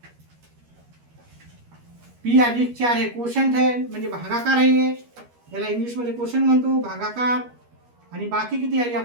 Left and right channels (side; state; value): left; late; 13 ms